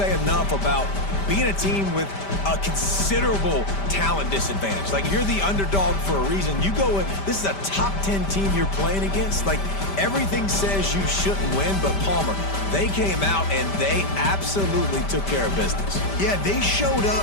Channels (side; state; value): right; late; 5.1 ms